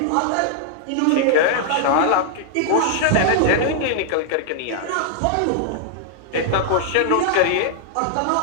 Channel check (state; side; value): different; both; correlation -0.01